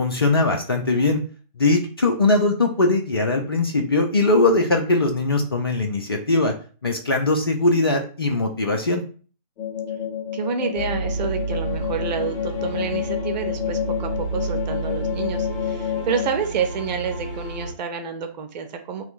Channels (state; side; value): inverted; both; correlation -0.43